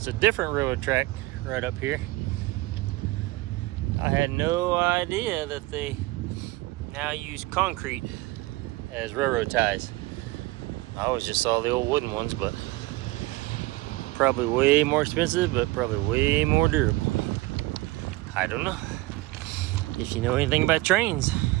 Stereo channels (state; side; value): quieter; left; 19.7 dB